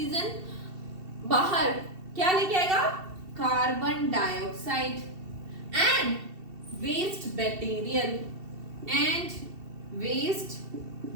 बाहर क्या लेके आएगा? Carbon dioxide and waste material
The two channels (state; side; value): late; left; 2.7 ms